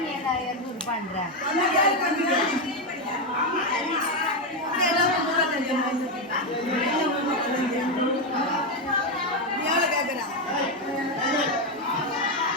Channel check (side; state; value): both; normal; correlation 0.07